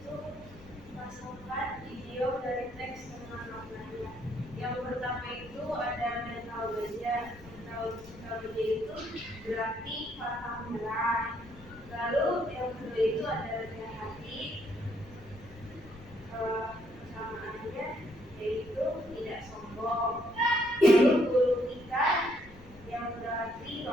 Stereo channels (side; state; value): left; noise; rumble, 20 dB below the sound